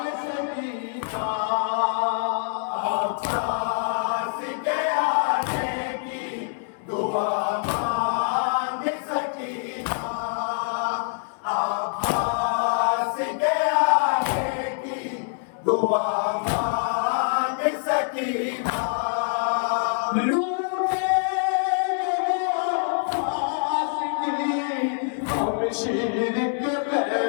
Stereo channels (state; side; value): silent; right; 62 dB below the other